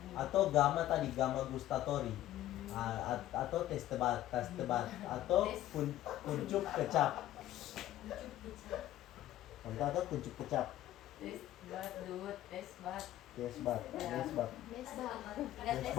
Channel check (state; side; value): quieter; right; 13.9 dB